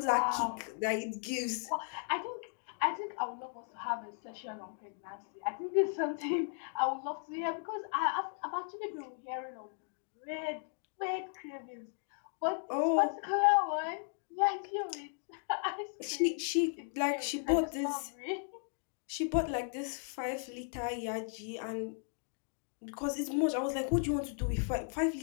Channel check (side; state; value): right; silent; 54 dB below the other